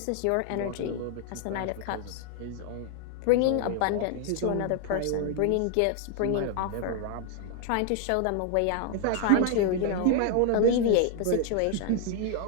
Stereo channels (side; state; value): both; different; correlation 0.00